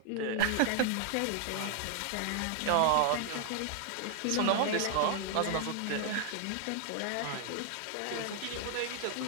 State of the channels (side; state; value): both; different; correlation 0.00